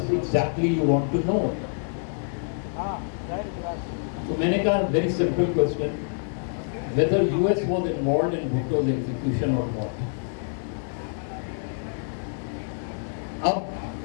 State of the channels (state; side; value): silent; right; digital silence